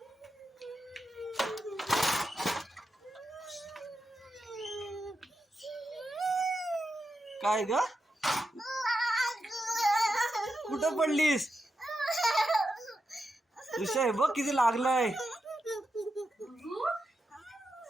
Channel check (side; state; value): both; normal; correlation 0.87